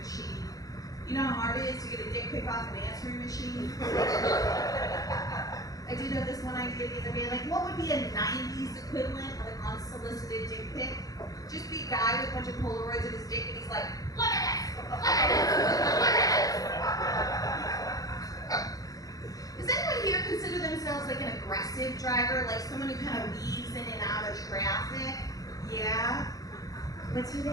You know how hard it is to get a dick pic off an answering machine? I did have this one idea the other day, like what would be a 90s equivalent of an unsolicited dick pic? Just be a guy with a bunch of Polaroids of his dick and he's like, look at this! Look at this! Look at this! Does anyone here consider themselves like an aggressive driver, like someone who kind of weaves in and out of traffic? Yeah? What's your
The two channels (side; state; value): right; late; 0.17 ms